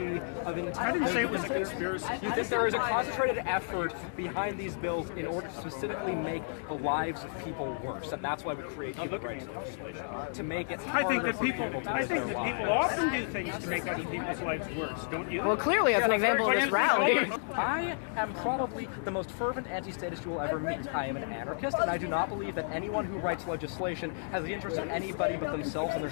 of intent. I didn't say it was a conspiracy. You think there is a concentrated effort behind these bills in order to specifically make the lives of people worse, and that's why we create human rights legislation to make it. I think that harder for people. to I live think their that people lives. often do things to make other people's lives worse. Don't you? Well, clearly, as an example of this rally. I am probably the most fervent anti-statist you will ever meet. I am an anarchist, and I do not believe that anyone who writes legislation has the interest of anybody but themselves and their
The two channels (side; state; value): right; silent; digital silence